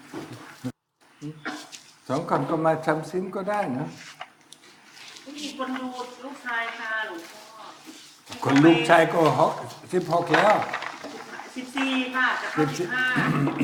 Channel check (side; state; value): both; identical; correlation 1.00